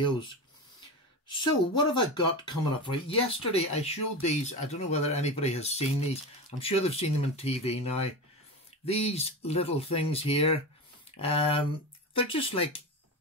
So what have I got coming up for you? Yesterday, I showed these. I don't know whether anybody has seen these. I'm sure they've seen them on TV now. These little things here, they're just like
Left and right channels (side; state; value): both; normal; correlation 0.23